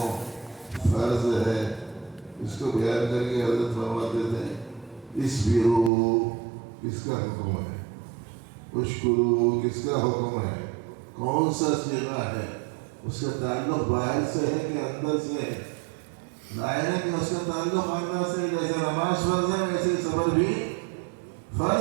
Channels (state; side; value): drops out; left; at 5.9 s